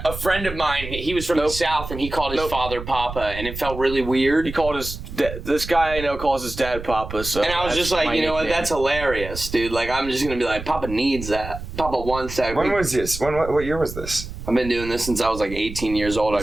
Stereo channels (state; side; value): noise; right; rumble, 10 dB below the sound